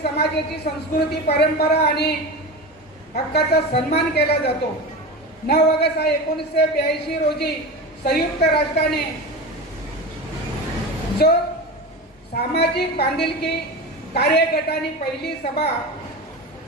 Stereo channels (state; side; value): normal; both; correlation 0.26